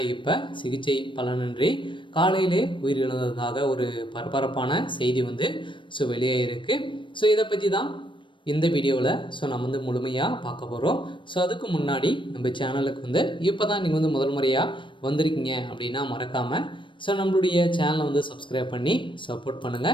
இப்போ சிகிச்சை பலனின்றி காலையிலே உயிரிழந்ததாக ஒரு பரபரப்பான செய்தி வெளியாகிருக்கு. இதை பற்றி தான் இந்த வீடியோவில் நம்ம முழுமையாக பார்க்க போகிறோம். அதுக்கு முன்னாடி நம்ம சேனலுக்கு இப்போ தான் நீங்கள் முதல் முறையாக வந்திருக்கீங்க அப்படின்னா மறக்காமல் நம்மளுடைய சேனலை சப்ஸ்கிரைப் பண்ணி சப்போர்ட்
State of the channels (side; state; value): right; late; 0.24 ms